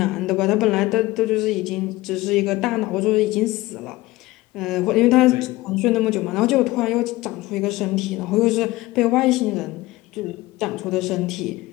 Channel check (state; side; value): quieter; right; 19.1 dB